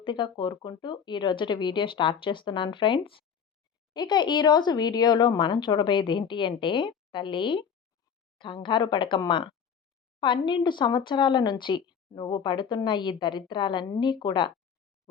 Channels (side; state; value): right; quieter; 7.2 dB